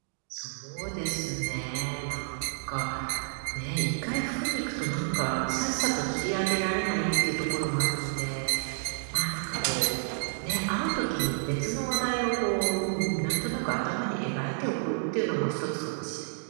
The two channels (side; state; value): left; silent; digital silence